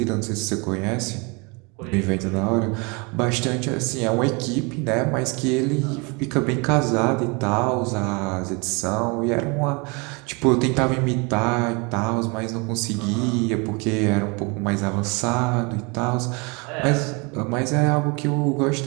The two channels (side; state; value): left; quieter; 29.7 dB